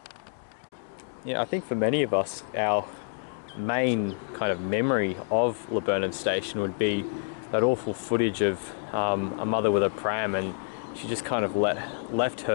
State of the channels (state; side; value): silent; right; digital silence